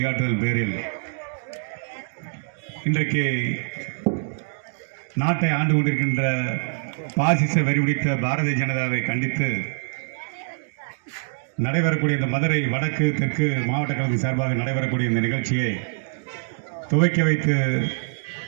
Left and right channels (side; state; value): left; silent; 62 dB below the other